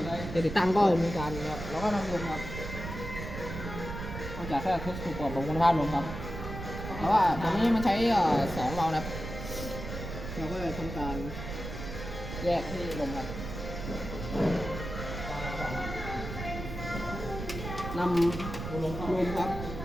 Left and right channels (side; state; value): right; noise; rumble, 7 dB below the sound